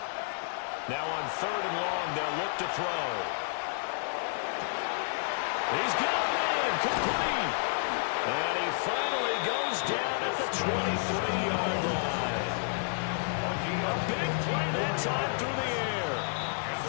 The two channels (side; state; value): right; silent; digital silence